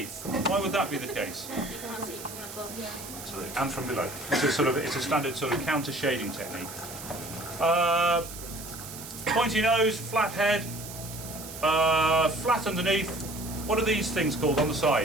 Why would that be the case? Absolutely. And from below. It's a standard sort of counter shading technique. Pointy nose, flat head, flat underneath. What are these things called on the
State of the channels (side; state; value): right; noise; hiss, 12 dB below the sound